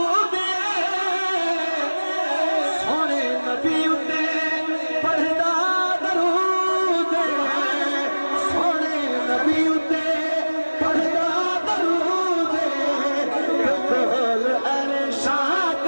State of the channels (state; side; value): inverted; both; correlation -1.00